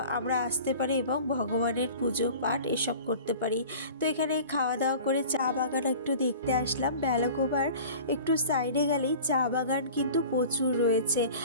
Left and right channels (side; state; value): both; inverted; correlation -0.42